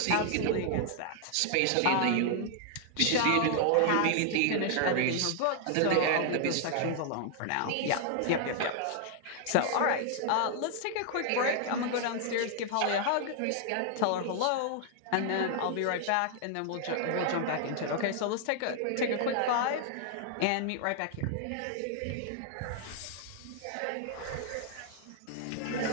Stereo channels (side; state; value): both; different; correlation 0.00